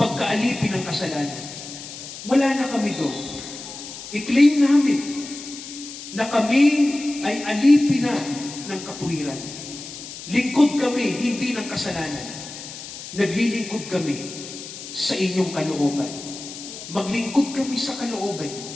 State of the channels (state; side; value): noise; left; hiss, 12 dB below the sound